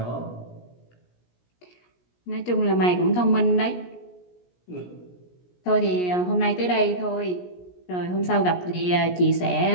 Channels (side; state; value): right; late; 17 ms